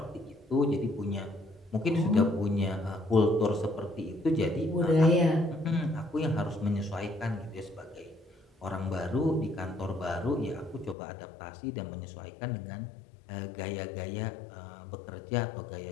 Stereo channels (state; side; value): drops out; right; at 11.0 s